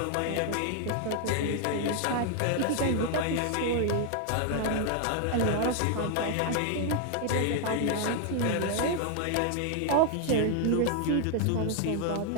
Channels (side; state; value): both; different; correlation 0.00